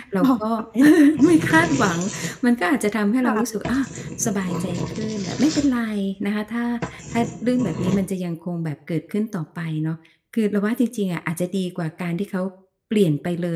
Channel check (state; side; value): identical; both; correlation 1.00